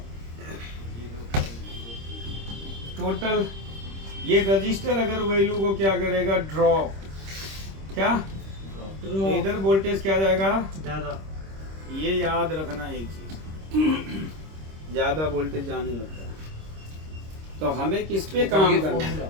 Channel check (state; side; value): late; left; 26 ms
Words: टोटल ये रजिस्टर अगर वैल्यू को क्या करेगा, ड्रॉप, क्या इधर वोल्टेज क्या जाएगा ज्यादा, ये याद रखना एक चीज, ज्यादा वोल्टेज जाने लगता है। तो हमें किस पे काम करना है,